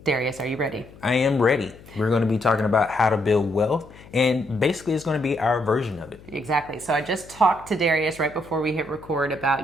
Darius, are you ready? I am ready. We're going to be talking about how to build wealth, and basically it's going to be our version of it. Exactly. So I just talked to Darius right before we hit record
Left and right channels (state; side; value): noise; left; hum, 21 dB below the sound